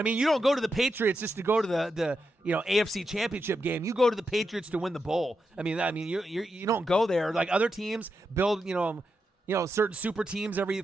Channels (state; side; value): normal; both; correlation 0.86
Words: mean? You don't go to the Patriots just to go to the AFC Championship game. You go to the Patriots to win the bowl. I mean you don't go there like other teams build, certain super teams every